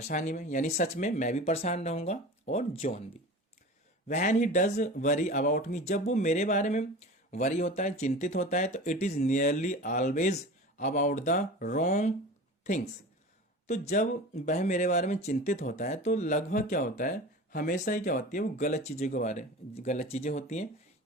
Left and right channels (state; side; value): normal; both; correlation 0.35